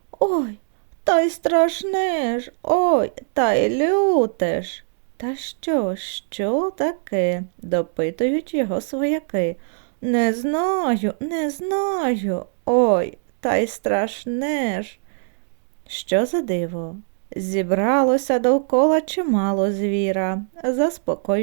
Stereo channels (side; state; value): left; silent; digital silence